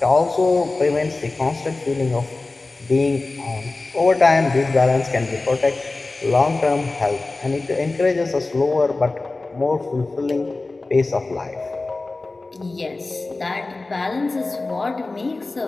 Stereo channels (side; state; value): right; quieter; 3.3 dB